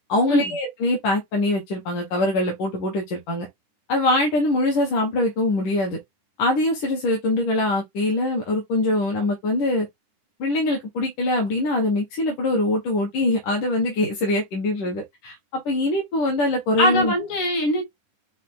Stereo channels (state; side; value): late; right; 11 ms